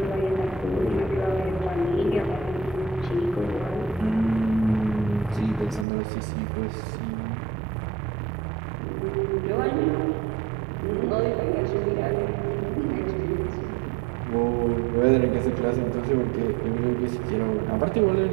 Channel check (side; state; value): left; drops out; at 5.9 s